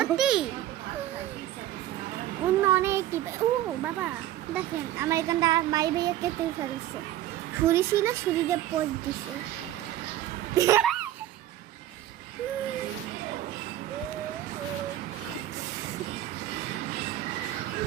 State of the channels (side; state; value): left; quieter; 13.5 dB